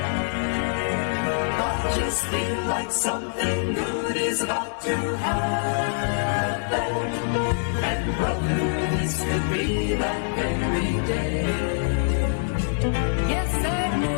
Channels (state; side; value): silent; right; digital silence